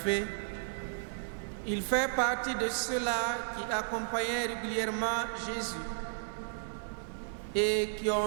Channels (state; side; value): silent; left; digital silence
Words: il fait partie de ceux-là qui accompagnaient régulièrement Jésus et qui ont